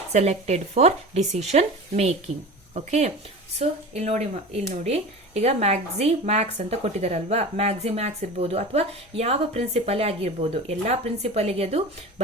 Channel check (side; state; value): both; normal; correlation 0.33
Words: selected for decision making. Okay, so ಇಲ್ಲಿ ನೋಡಿ ಈಗ Max ಅಂತ ಕೊಟ್ಟಿದಾರಲ್ವಾ, Max ಇರ್ಬೋದು ಅಥವಾ ಯಾವ principal ಆಗಿರ್ಬೋದು, ಎಲ್ಲಾ ಪ್ರಿನ್ಸಿಪಲ್ಗೆ ಅದು